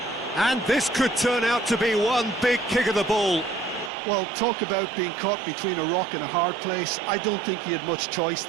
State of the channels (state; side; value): drops out; left; at 3.9 s